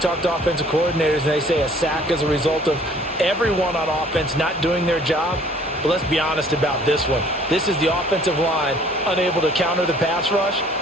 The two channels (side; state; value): both; normal; correlation 0.55